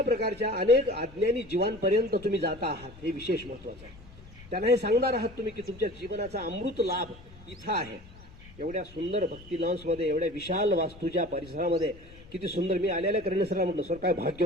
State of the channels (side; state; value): left; noise; rumble, 20 dB below the sound